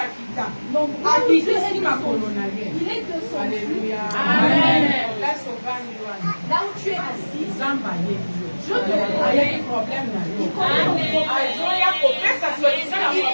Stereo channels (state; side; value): inverted; both; correlation -1.00